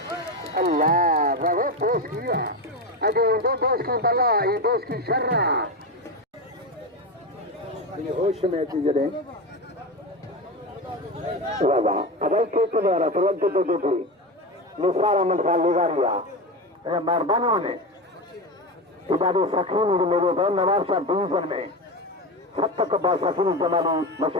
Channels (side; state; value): both; normal; correlation 0.19